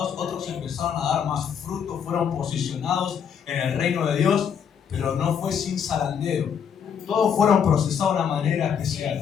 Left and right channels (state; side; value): quieter; right; 7.7 dB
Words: Otros empezaron a dar más fruto, fueron posicionados en el reino de Dios. Pero no fue sin zarandeo. Todos fueron procesados de una manera